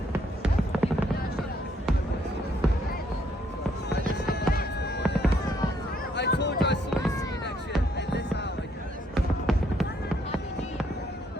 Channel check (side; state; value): both; normal; correlation 0.70